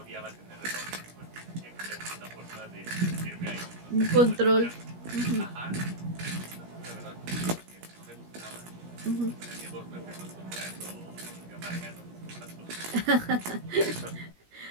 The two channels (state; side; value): late; left; 17 ms